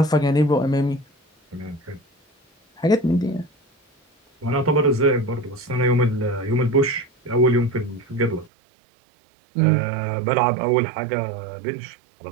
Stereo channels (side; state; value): left; drops out; at 8.5 s